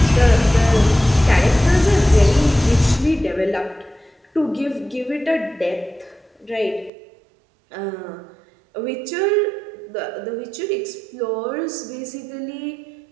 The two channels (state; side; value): drops out; left; at 6.9 s